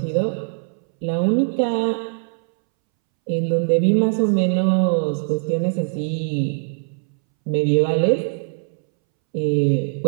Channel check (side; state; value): left; silent; 64 dB below the other